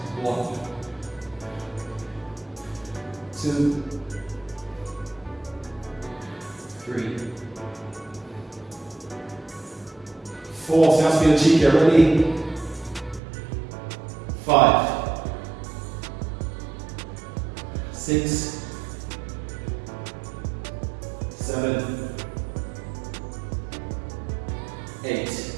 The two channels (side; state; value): left; drops out; at 13.2 s